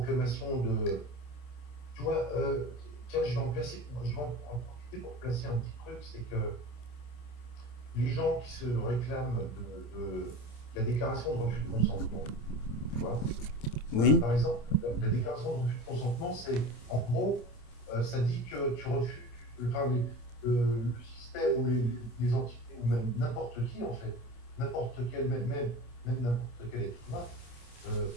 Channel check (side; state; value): right; late; 27 ms